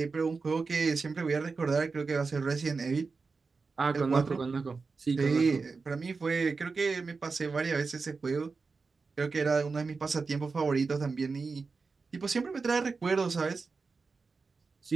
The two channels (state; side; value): quieter; left; 4.5 dB